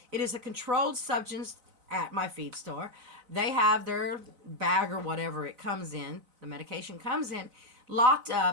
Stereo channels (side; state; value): left; late; 4.0 ms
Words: It is a controlled substance at my feed store. They have their bag or whatever it comes in, the medication comes in, locked